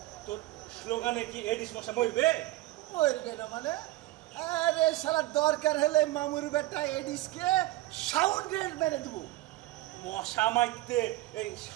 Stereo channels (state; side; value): quieter; left; 17.6 dB